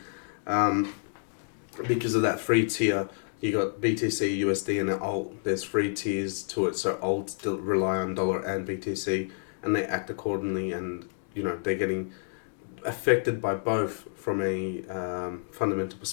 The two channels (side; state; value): right; silent; digital silence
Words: because of that free tier, you got BTC, USD, and alt. There's free tiers to it. So alt still rely on dollar and BTC, and they act accordingly. And they're getting affected by both from a fundamental